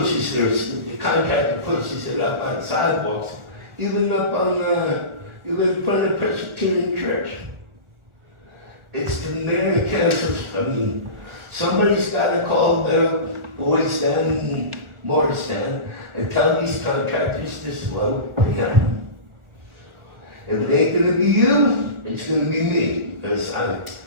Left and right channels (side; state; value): left; late; 1.4 ms